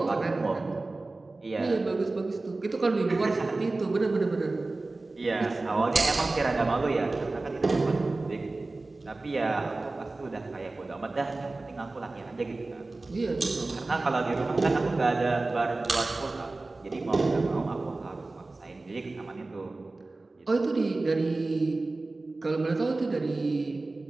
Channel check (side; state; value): left; quieter; 3.2 dB